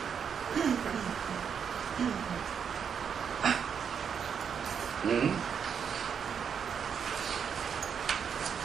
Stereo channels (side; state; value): left; quieter; 7.2 dB